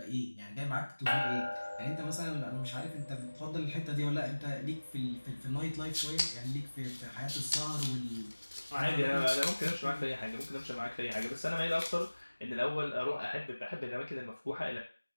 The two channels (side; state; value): both; inverted; correlation -1.00